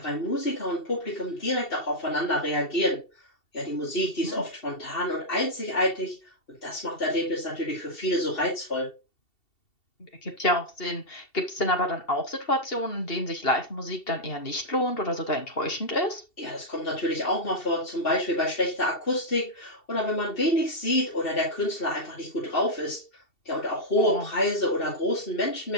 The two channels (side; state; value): right; late; 2.7 ms